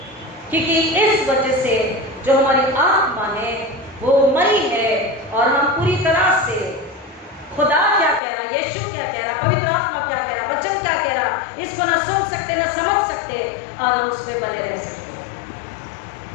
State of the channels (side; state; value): right; drops out; at 8.2 s